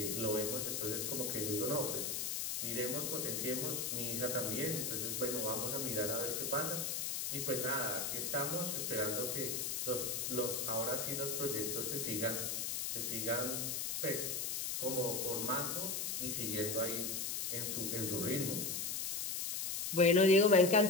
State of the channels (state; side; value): noise; left; hiss, 1 dB below the sound